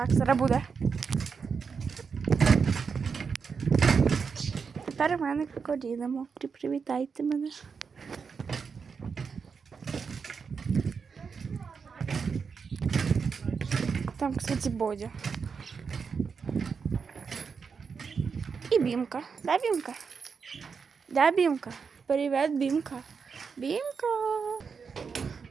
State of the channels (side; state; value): left; quieter; 5.7 dB